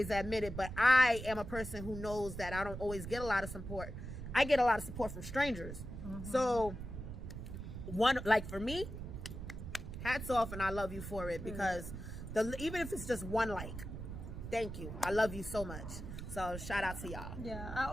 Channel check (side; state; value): right; noise; rumble, 8 dB below the sound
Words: admit it, but I am a person who knows that I don't always get a lot of support. I get a lot of support from strangers. So for me, hats off, and I love you for it because even if it's just 1 like, thank you. I love you so much. So shout out to y'all. Yeah, I